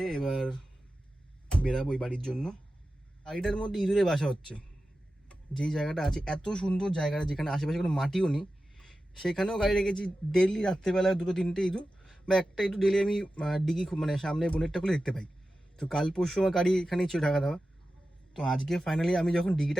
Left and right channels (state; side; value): normal; both; correlation 0.93